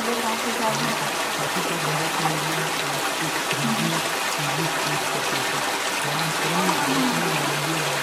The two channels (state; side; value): identical; both; correlation 1.00